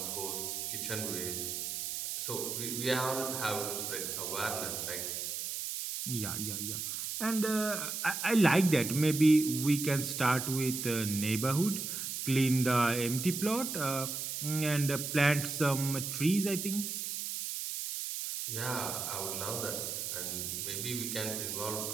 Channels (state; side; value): noise; right; hiss, 4 dB below the sound